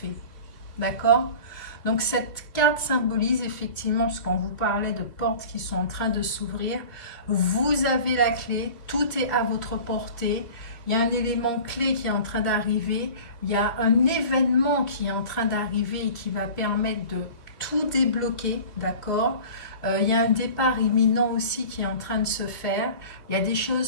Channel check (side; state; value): right; late; 2.5 ms